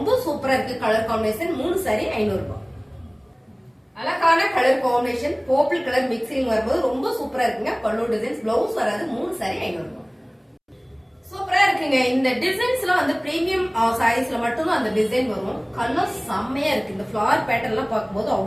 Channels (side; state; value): both; identical; correlation 1.00